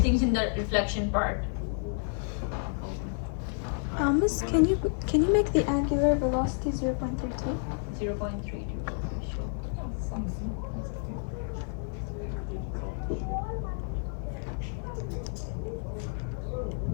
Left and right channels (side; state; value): right; silent; 58 dB below the other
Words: in the reflection part. Miss, can you make the angular velocity 0.32? 0.32.